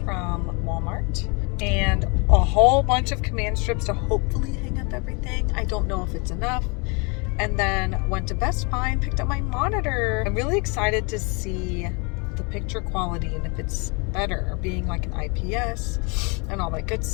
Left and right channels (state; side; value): quieter; right; 31.5 dB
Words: Walmart and a whole bunch of command strips to hopefully hang up everything. I don't know if it's enough. And then went to Best Buy and picked up my monitor. I'm really excited to see the picture quality and if it's better, being like an IPS and all that good